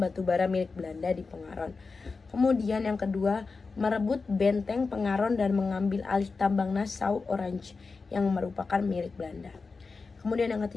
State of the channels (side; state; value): right; quieter; 4.3 dB